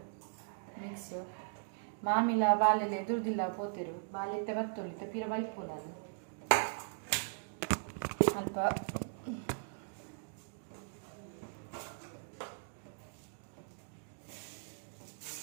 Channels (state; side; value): silent; left; digital silence